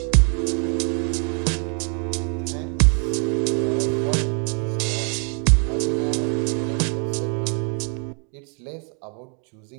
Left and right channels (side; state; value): left; quieter; 38.4 dB